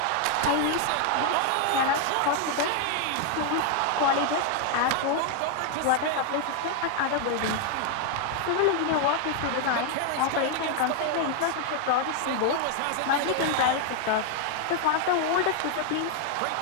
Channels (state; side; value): different; both; correlation 0.00